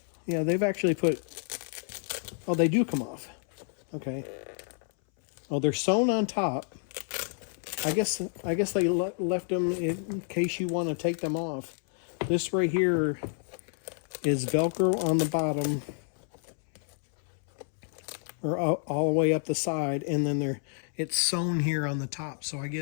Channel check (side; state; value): right; silent; 58 dB below the other